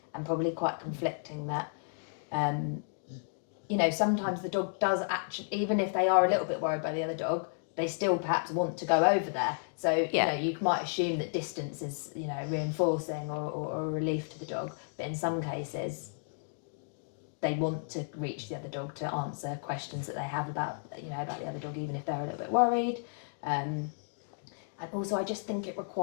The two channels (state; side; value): silent; right; digital silence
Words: and probably quite conflicting that you know, sometimes the dog does actually, even if they are a little bit worried by the other dog, they still perhaps want to go over there. So, you know, you might assume that distance is, you know, reinforcing or a relief to the dog. But in some cases, they want to reach the other dog to answer questions that they have about, you know, about the other dog, even if they're a little bit worried. And also, I just think it